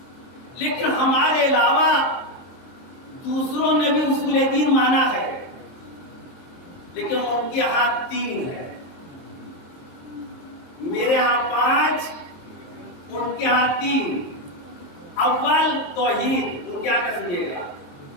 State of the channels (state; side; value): late; right; 23 ms